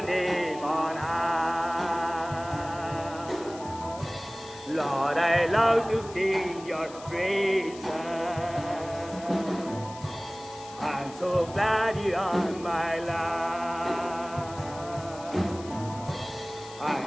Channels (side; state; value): left; noise; hiss, 18 dB below the sound